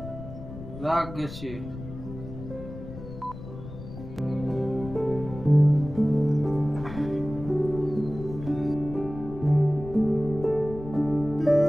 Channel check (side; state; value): left; noise; rumble, 12 dB below the sound